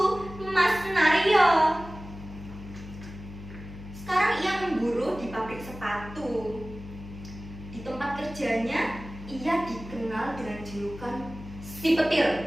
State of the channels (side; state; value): left; noise; hum, 14 dB below the sound